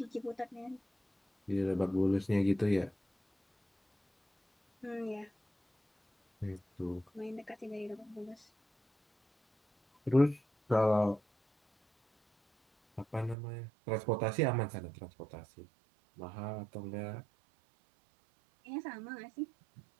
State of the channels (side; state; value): left; drops out; at 13.4 s